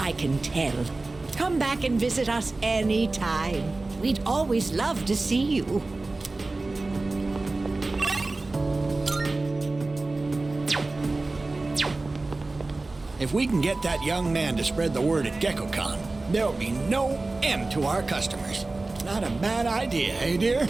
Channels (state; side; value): quieter; left; 3.3 dB